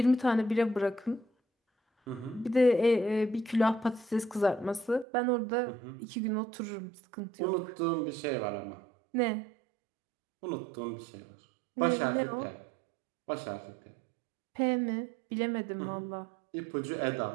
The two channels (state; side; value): drops out; left; at 5.1 s